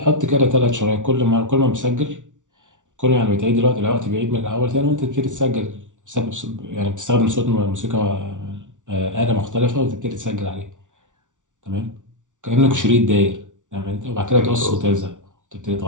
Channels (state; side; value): late; left; 0.87 ms